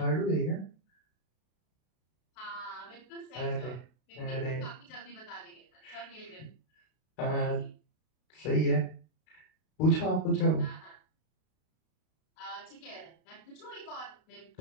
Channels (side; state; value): right; late; 32 ms